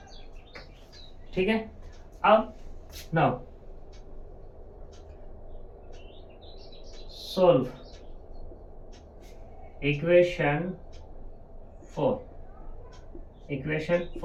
ठीक है, अब नाउ सोल्व इक्वेशन 4।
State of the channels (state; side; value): identical; both; correlation 1.00